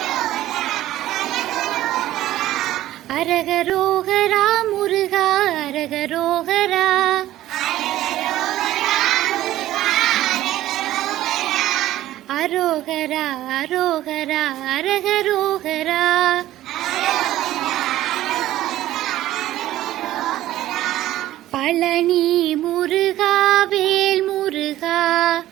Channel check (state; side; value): quieter; left; 14.4 dB